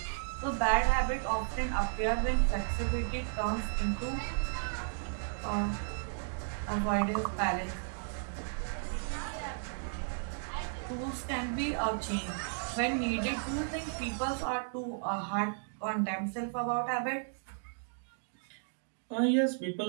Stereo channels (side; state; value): left; silent; digital silence